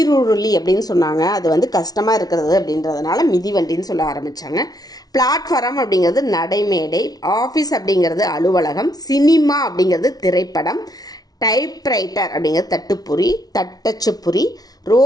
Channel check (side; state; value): right; late; 0.19 ms